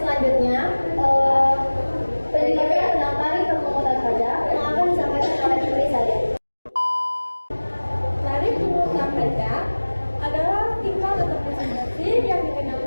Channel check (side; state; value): both; inverted; correlation -1.00